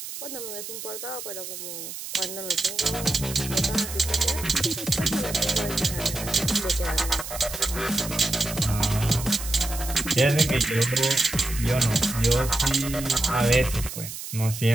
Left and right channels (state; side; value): noise; right; hiss, 9 dB below the sound